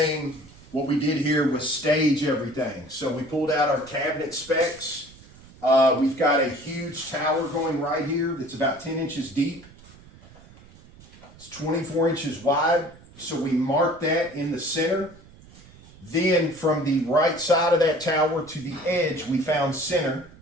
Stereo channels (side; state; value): right; noise; rumble, 23 dB below the sound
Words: What we did here was stage everything. So we pulled out our cabinet specs. We've got a huge tower going right here that's about 10 inches deep. It's 24 inches wide. So we marked that in the center. Then from the right side of that tower to the edge, we found center.